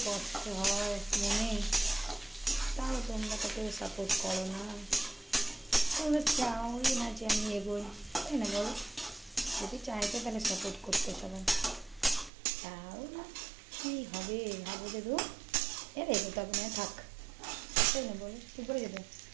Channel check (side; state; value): left; drops out; at 12.3 s